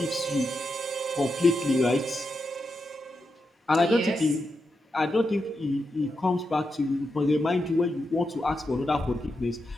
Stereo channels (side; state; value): both; normal; correlation 0.86